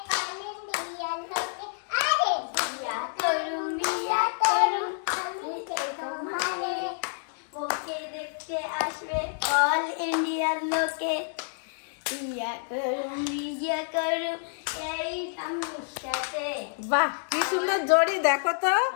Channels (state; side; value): silent; right; digital silence